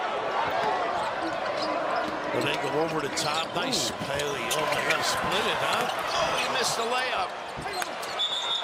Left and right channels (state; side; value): identical; both; correlation 1.00